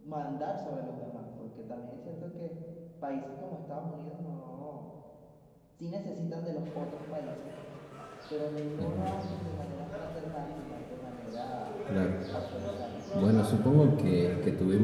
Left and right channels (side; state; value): both; identical; correlation 1.00